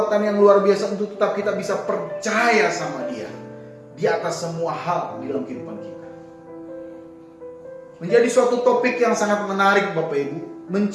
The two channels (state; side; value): identical; both; correlation 1.00